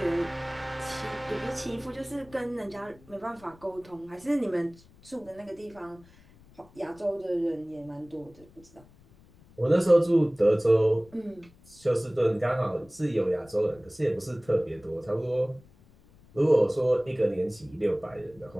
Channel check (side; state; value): left; noise; rumble, 26 dB below the sound